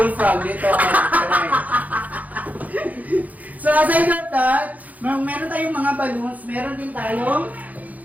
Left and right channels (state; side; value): late; left; 0.077 ms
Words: dito. So aside from that, meron tayong mga balloons, meron din tayong